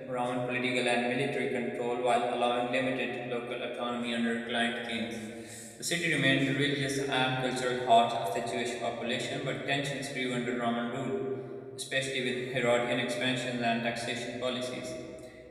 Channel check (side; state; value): both; identical; correlation 1.00